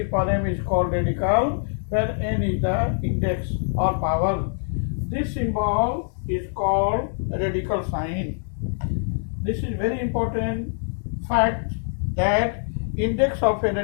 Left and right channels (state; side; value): silent; right; digital silence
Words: power m is called radical, where n is the index or power. This symbol is called radical sign. This is very important fact that index of a